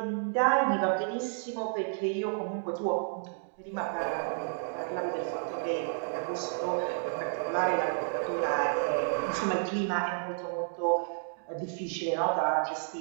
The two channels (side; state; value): left; silent; digital silence